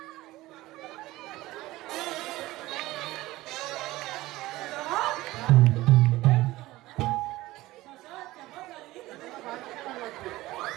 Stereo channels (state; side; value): quieter; left; 18.0 dB